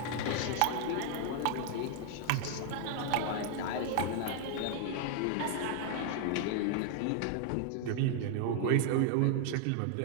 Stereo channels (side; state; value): both; different; correlation 0.00